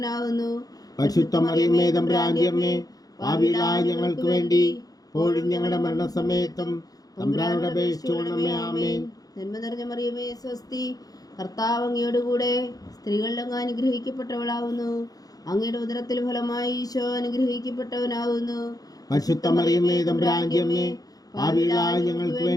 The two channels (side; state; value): right; late; 0.18 ms